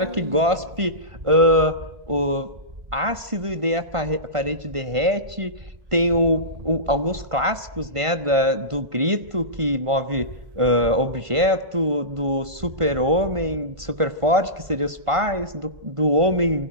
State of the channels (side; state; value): left; late; 1.5 ms